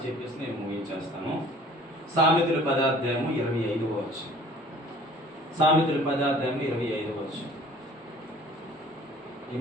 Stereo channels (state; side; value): normal; both; correlation 0.50